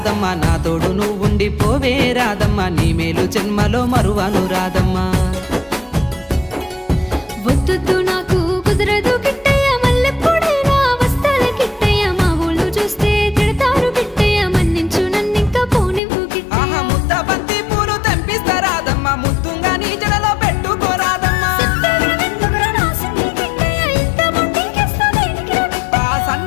నా తోడు నువ్వుండి పోవే రాదమ్మ, నీ మేలు జన్మలో మరువను రాదమ్మ. వద్దు నాకు కుదరదు కిట్టయ్య, మల్లెప్పుడైనా వస్తాల కిట్టయ్య, మా ఊళ్ళు చూస్తే తిడతారు కిట్టయ్య, మన్నించు నన్నింకా పోనివ్వు కిట్టయ్య. ముద్ద బంతి పూలు తెంపిస్తా రాదమ్మ, ముద్దుంగా నీ జడలో పెట్టుకోరాదమ్మ.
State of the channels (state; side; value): drops out; right; at 16.0 s